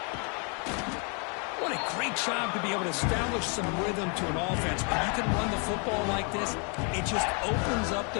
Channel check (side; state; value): right; quieter; 36.6 dB